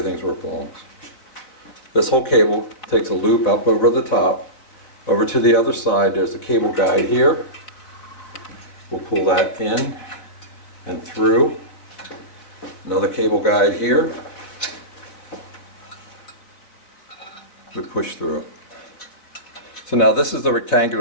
where it belongs. This whole cable takes a loop up over the top. Over to the other side, there's a cable guide here. We'll pull that in and through. Another cable guide here. We push through. So now this is the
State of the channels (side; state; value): right; late; 4.1 ms